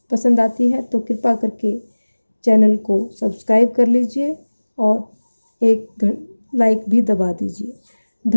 पसंद आती है तो कृपा करके चैनल को सब्सक्राइब कर लीजिए और एक लाइक भी दबा दीजिए।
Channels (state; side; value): inverted; both; correlation -1.00